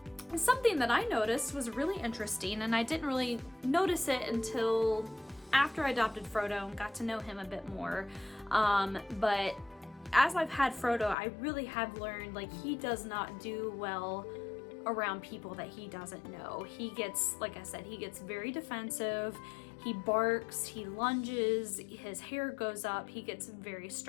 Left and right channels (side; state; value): right; drops out; at 11.2 s